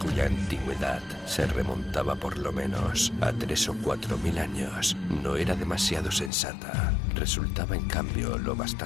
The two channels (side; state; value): right; drops out; at 6.3 s